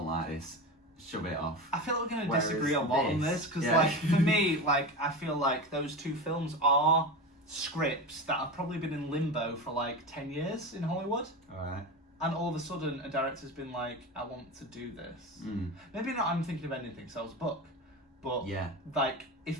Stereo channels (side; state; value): both; normal; correlation 0.24